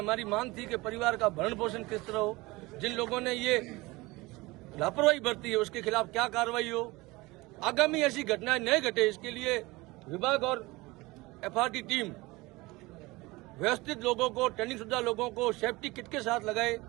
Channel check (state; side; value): quieter; left; 21.9 dB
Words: मांग थी कि परिवार का भरण पोषण किस तरह हो, जिन लोगों ने ये लापरवाही बरती है उसके खिलाफ क्या कार्रवाई हो, आगामी ऐसी घटनाएं न घटे इसके लिए विभाग और एफआरटी टीम व्यवस्थित लोगों को, ट्रेनिंग शुदा लोगों को सेफ्टी किट के साथ लगाए